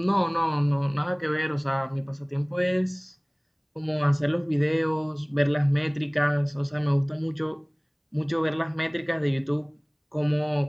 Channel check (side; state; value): both; identical; correlation 1.00